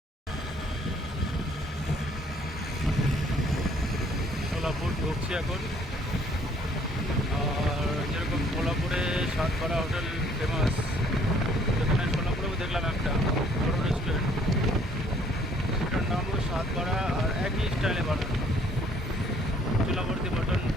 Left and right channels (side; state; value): both; normal; correlation 0.61